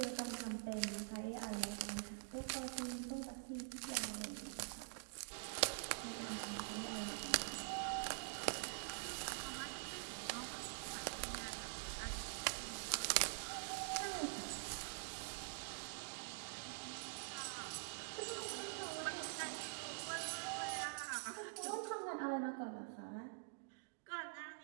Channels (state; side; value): silent; left; digital silence